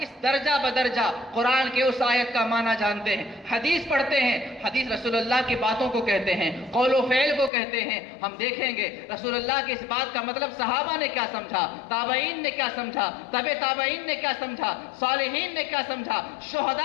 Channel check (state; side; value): drops out; right; at 7.5 s